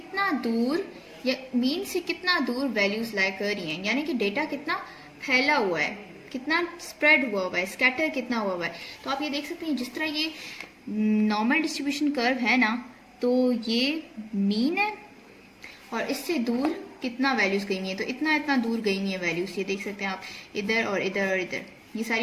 दूर या मीन से कितना दूर वैल्यूज लाया कर रही हैं, यानी कि डेटा कितना फैला हुआ है, कितना स्प्रेड हुआ हुआ है, स्कैटर कितना हुआ हुआ है। तो आप ये देख सकते हैं जिस तरह ये नॉर्मल डिस्ट्रीब्यूशन कर्व है ना, तो ये मीन है और इससे दूर कितना वैल्यूज गई हुई है, तो इतना इतना दूर गई हुई है वैल्यूज। ये देख सकते हैं आप, इधर और इधर और इधर ये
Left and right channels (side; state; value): both; identical; correlation 1.00